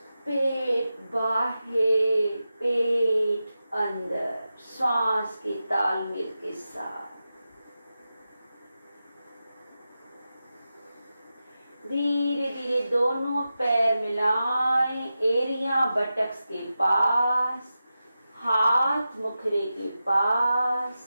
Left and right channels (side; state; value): both; inverted; correlation -0.92